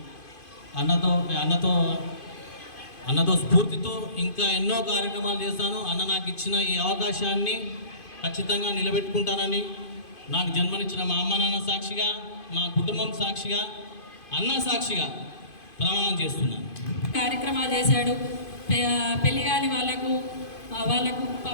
అన్నతో స్ఫూర్తితో ఇంకా ఎన్నో కార్యక్రమాలు చేస్తాను. అన్న నాకు ఇచ్చిన ఈ అవకాశాన్ని ఖచ్చితంగా నిలబెట్టుకుంటానని నాకు జన్మనిచ్చిన మా అమ్మ నాన్న సాక్షిగా, మా కుటుంబం సాక్షిగా, అన్న సాక్షిగా ప్రమాణం చేస్తున్నాను. కార్యక్రమాలు చేశాడు. పెళ్లి కాని వాళ్ళకు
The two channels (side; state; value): right; late; 2.5 ms